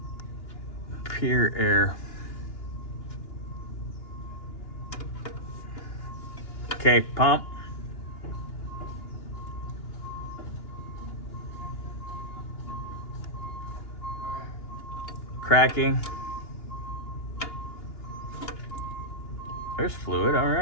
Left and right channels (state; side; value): late; right; 2.9 ms